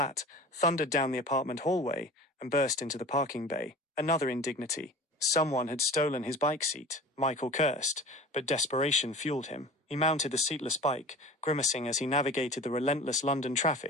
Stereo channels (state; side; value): normal; both; correlation 0.39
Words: thundered down the apartment hallway, and burst into the parking bay. Another indignity. Someone had stolen his bike seat. Michael cursed, but desperation fueled him. He mounted the seatless bike, grimacing as he navigated the relentless London